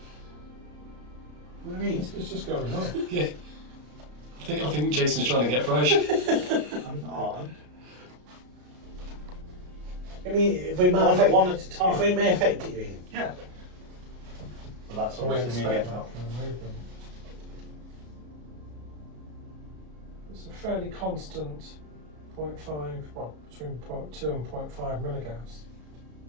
what do you mean? It's just going on. Yeah. I think Jason's trying to get fresh. I'm not. I mean, if we might One, affect, one at a time. if we may affect it, you mean? Yeah. Well, that's We obviously me expect getting that from the movement. It's a fairly constant 0.5, well, between 0.2 and 0.5 milligauss.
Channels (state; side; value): late; left; 33 ms